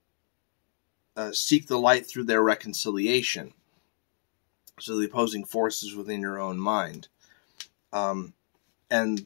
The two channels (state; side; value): silent; right; digital silence